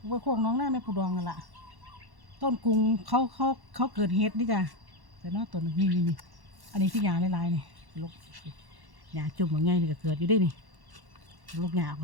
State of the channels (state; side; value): late; left; 1.1 ms